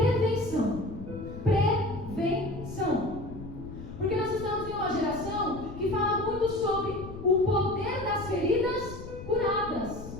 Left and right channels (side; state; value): left; noise; rumble, 12 dB below the sound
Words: Prevenção. Porque nós estamos em uma geração que fala muito